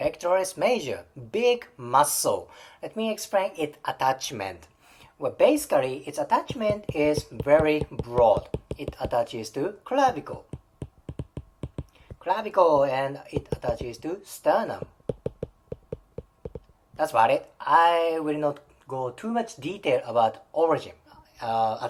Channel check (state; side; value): identical; both; correlation 1.00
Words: major, big muscle. Let me explain its attachment. Well, basically, its attachment is very broad. It attaches to clavicle, and it attaches to sternum. That's about it. I will not go too much detail about origin,